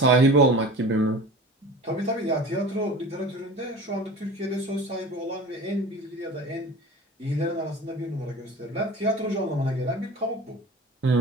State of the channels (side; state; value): both; normal; correlation 0.38